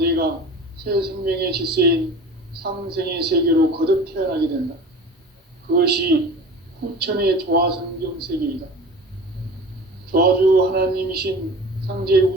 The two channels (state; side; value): normal; both; correlation 0.37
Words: 새 생명의 질서인 상생의 세계로 거듭 태어나게 된다. 그것이 후천의 조화성경 세계이다. 조화주 하나님이신 상제